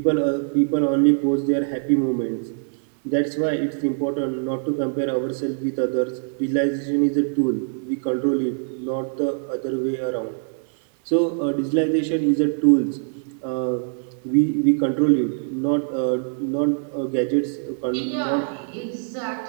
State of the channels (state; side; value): silent; left; digital silence